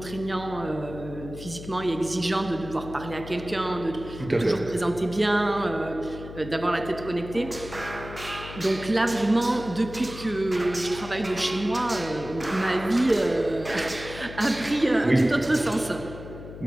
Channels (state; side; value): noise; left; hum, 13 dB below the sound